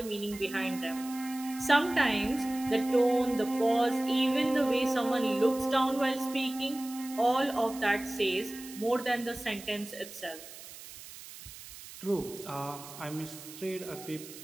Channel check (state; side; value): noise; right; hiss, 15 dB below the sound